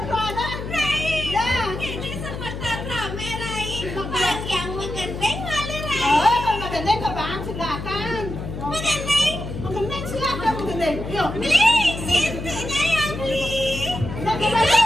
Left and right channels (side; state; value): left; noise; hum, 7 dB below the sound